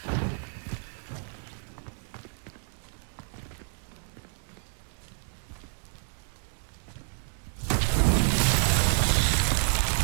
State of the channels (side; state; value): left; silent; digital silence